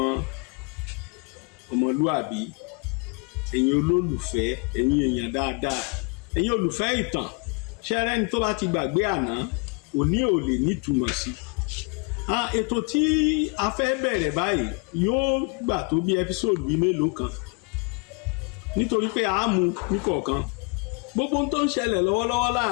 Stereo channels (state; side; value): quieter; right; 32.1 dB